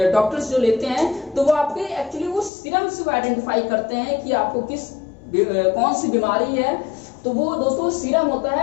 डॉक्टर्स जो लेते हैं तो वो आपके एक्चुअली वो सीरम से आइडेंटिफाई करते हैं कि आपको कौन सी बीमारी है। तो वो दोस्तों सीरम होता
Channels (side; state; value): right; drops out; at 2.5 s